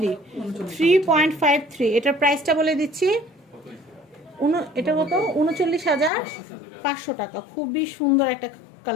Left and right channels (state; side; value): drops out; right; at 6.1 s